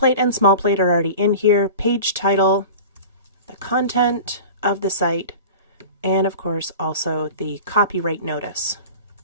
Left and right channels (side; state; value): both; inverted; correlation -0.36